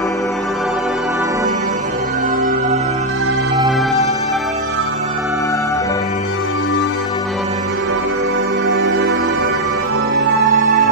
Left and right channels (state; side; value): normal; both; correlation 0.01